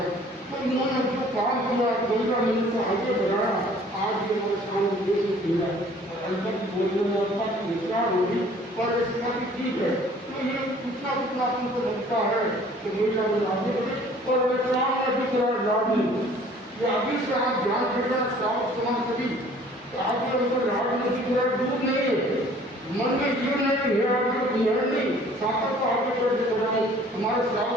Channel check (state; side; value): normal; both; correlation 0.53